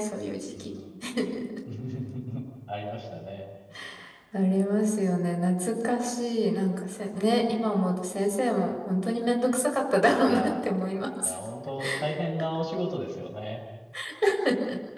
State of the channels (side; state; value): both; identical; correlation 1.00